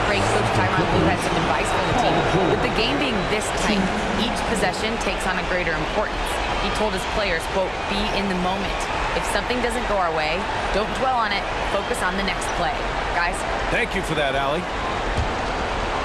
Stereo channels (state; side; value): identical; both; correlation 1.00